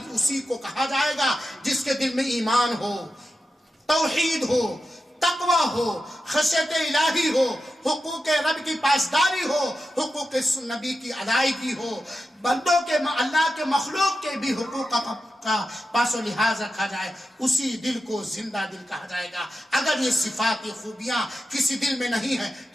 اسی کو کہا جائے گا جس کے دل میں ایمان ہو، توحید ہو، تقوی ہو، خشیت الہی ہو، حقوق رب کی پاسداری ہو، حقوق نبی کی ادائیگی ہو، بندوں کے، اللہ کے مخلوق کے بھی حقوق کا پاس و لحاظ رکھا جائے، اسی دل کو زندہ دل کہا جائے گا۔ اگر یہ صفات، یہ خوبیاں کسی دل میں نہیں ہے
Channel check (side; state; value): both; normal; correlation 0.90